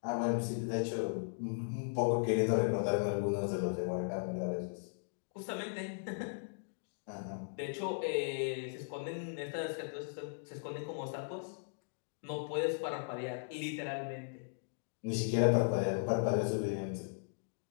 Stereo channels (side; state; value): right; silent; digital silence